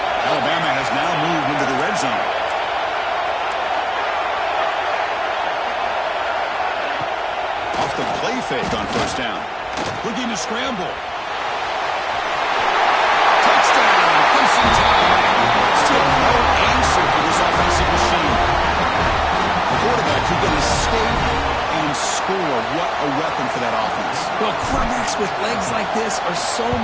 Alabama has now moved into the red zone. Off the play fake on 1st down. Looking to scramble. Touchdown. Crimson Tide. Still no answer for this offensive machine. The quarterback who's going to skate and score. What a weapon for that offense. Well, quarterbacks with legs like this are so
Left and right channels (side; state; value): both; identical; correlation 1.00